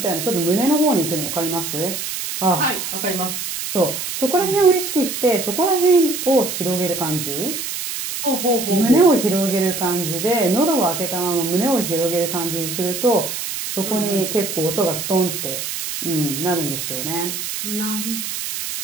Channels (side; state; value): right; noise; hiss, 5 dB below the sound